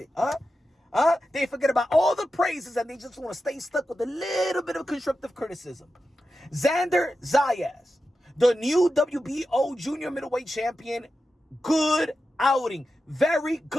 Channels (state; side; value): normal; both; correlation 0.91